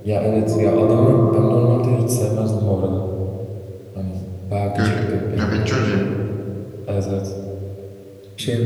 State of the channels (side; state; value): both; identical; correlation 1.00